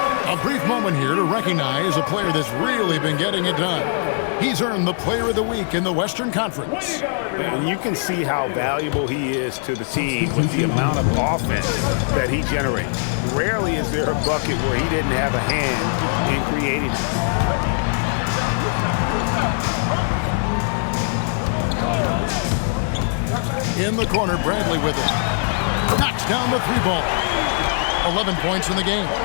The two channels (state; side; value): silent; right; digital silence